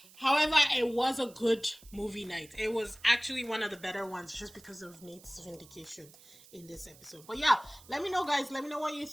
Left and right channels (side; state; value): right; noise; hiss, 23 dB below the sound